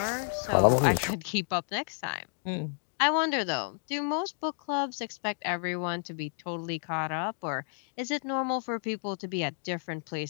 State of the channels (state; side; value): silent; right; 57 dB below the other